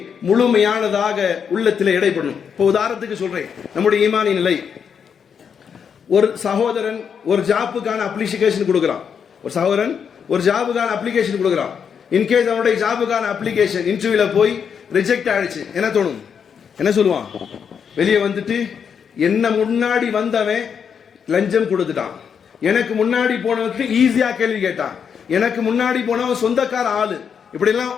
முழுமையானதாக உள்ளத்திலே இடைப்படும். இப்போ உதாரணத்துக்கு சொல்றேன், நம்முடைய ஈமானின் நிலை. ஒரு சகோதரன் ஒரு ஜாப்புக்கான அப்ளிகேஷன் கொடுக்கிறான், ஒரு சகோதரன் ஒரு ஜாபுக்கான அப்ளிகேஷன் கொடுக்கிறான். இன்கேஸ் அவனுடைய ஜாபுக்கான அப்ளிகேஷன் இன்டர்வியூல போய் ரிஜெக்ட் ஆயிடுச்சு, என்ன தோணும்? என்ன சொல்லுவான்? வெளியே வந்துட்டு, என்ன முன்னாடி வந்தவன் லஞ்சம் கொடுத்துட்டான், எனக்கு முன்னாடி போனவனுக்கு ஈஸியா கேள்வி கேட்டான், எனக்கு முன்னாடி போனவன் சொந்தக்கார ஆளு, இப்படி எல்லாம்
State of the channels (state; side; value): quieter; right; 7.1 dB